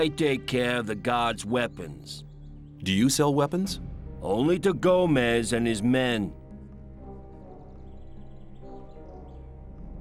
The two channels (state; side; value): identical; both; correlation 1.00